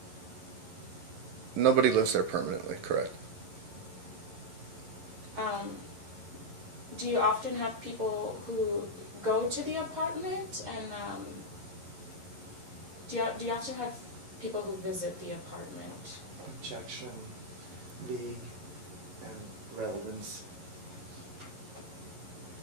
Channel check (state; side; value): late; left; 11 ms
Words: Nobody lives there permanently, correct? Do you often have people who go to the apartment, and do you often have people who visit the apartment? Objection, league, and relevance.